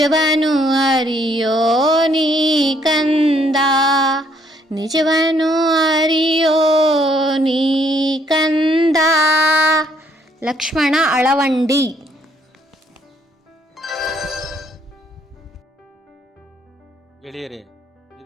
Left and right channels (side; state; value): both; normal; correlation 0.67